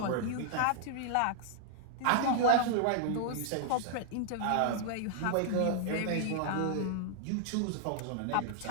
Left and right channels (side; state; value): both; different; correlation -0.01